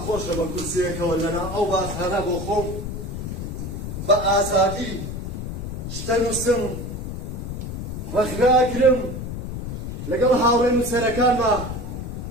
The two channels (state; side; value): noise; left; rumble, 6 dB below the sound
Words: خۆشە بە کورسیەکەوە لەنا ئەو باسهانە بۆ خۆم بە ئازادی شتە نووسم ڕەخناگرم لەگەڵ هاوڕێ نووسەرەکانمە